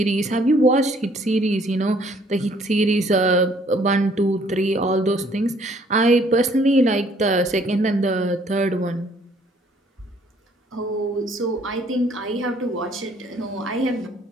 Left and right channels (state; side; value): normal; both; correlation 0.61